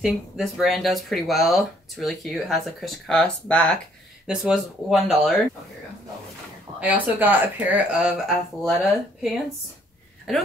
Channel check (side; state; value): both; normal; correlation 0.64